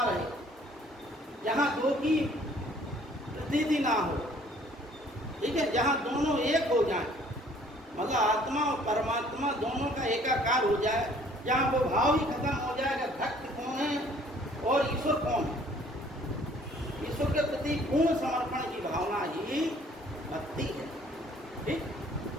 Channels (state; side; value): normal; both; correlation 0.58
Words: रहे, जहाँ दो की प्रतीति ना हो। ठीक है, जहाँ दोनों एक हो जाए, मतलब आत्मा और परमात्मा दोनों का एकाकार हो जाए, जहाँ वो भाव ही खत्म हो जाएगा भक्त कौन है और ईश्वर कौन है। ईश्वर के प्रति पूर्ण समर्पण की भावना ही भक्ति है। ठीक,